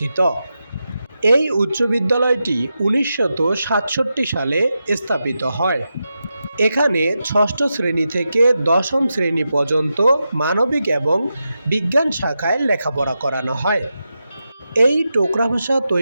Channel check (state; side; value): inverted; both; correlation -0.89